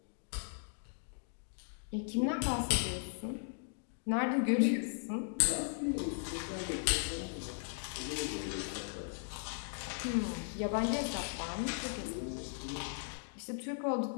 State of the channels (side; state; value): right; silent; digital silence